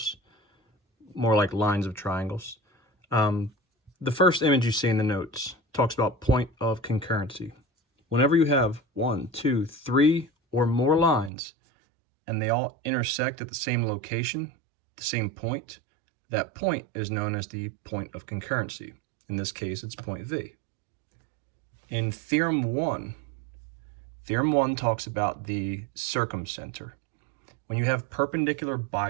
more like lines of triangles. The first image you see in the notes talks about point of concurrency. Whenever you have 1, 2, 3 or more lines and they all intersect at the same location, the same point, that point is known as the point of concurrency. In this case, it's point V. In Theorem 1 talks about the circumcenter. When you have perpendicular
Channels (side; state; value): left; drops out; at 11.3 s